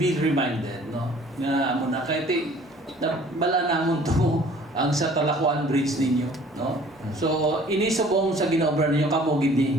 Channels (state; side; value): normal; both; correlation 0.52